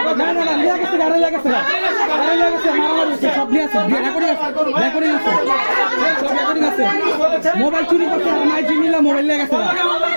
না না না নিয়ে গেছে গাড়ি লাগেছে মারামারি সব নিয়ে আছে রেকর্ডিং আছে সব রেকর্ডিং আছে মোবাইল চুরি করতে আমার জিনিলা মোবাইল নিয়ে গেছে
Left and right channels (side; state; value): both; inverted; correlation -1.00